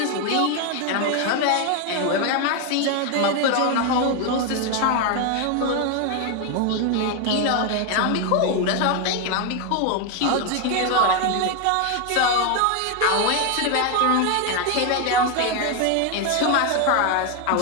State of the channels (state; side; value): different; both; correlation 0.01